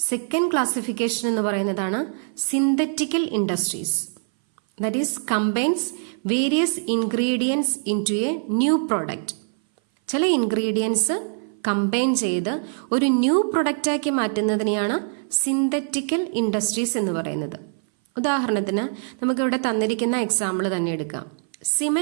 സെക്കൻഡ് ക്ലാസിഫിക്കേഷൻ എന്ന് പറയുന്നതാണ് synthetical industries. That is combines various ingredients into a new product. ചില ഇൻഗ്രീഡിയൻസ് കമ്പൈൻ ചെയ്ത് ഒരു ന്യൂ പ്രൊഡക്റ്റാക്കി മാറ്റുന്നതിനെയാണ് സിന്തറ്റിക്കൽ ഇൻഡസ്ട്രീസ് എന്ന് പറയുന്നത്. ഉദാഹരണത്തിന് നമുക്കിവിടെ തന്നിരിക്കുന്ന എക്സാമ്പിൾ തന്നെ എടുക്കാം.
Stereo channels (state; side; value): silent; left; 59 dB below the other